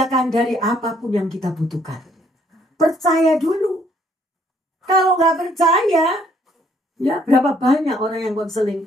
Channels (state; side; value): normal; both; correlation 0.65